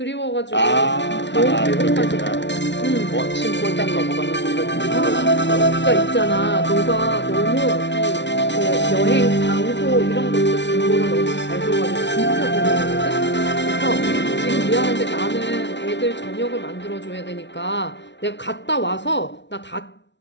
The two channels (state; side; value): late; right; 0.51 ms